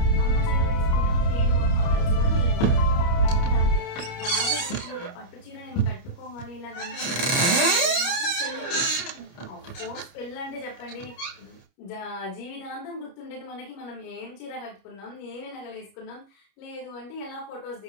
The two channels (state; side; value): late; right; 29 ms